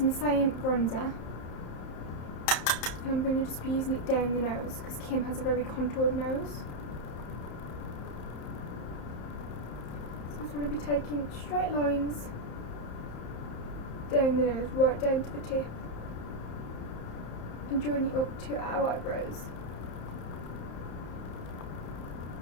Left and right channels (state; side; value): late; right; 30 ms